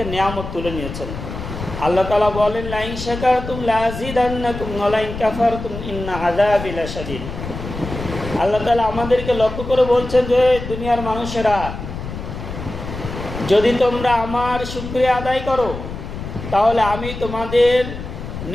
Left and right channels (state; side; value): noise; left; rumble, 8 dB below the sound